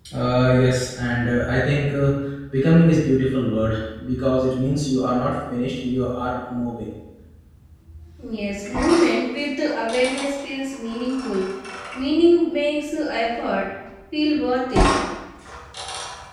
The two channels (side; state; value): both; identical; correlation 1.00